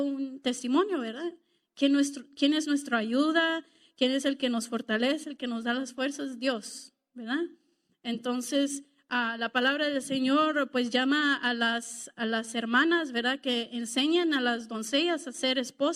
un testimonio, ¿verdad? ¿Quién es nuestra ayuda? ¿Quién es el que nos fortalece, el que nos da las fuerzas? Dios, ¿verdad? Entonces, la palabra del Señor pues llama a las hermanas, ¿verdad? Que enseñan a las doncellas a ser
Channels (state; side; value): identical; both; correlation 1.00